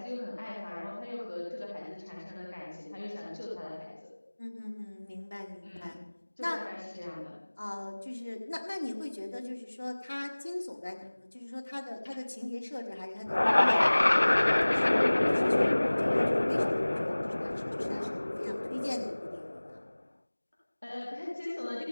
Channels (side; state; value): both; inverted; correlation -1.00